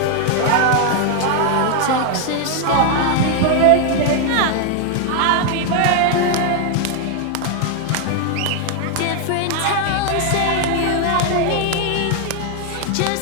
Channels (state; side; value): different; both; correlation 0.00